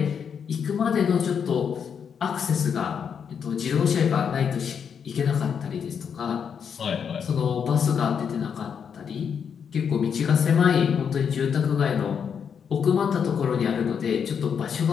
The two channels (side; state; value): right; quieter; 7.2 dB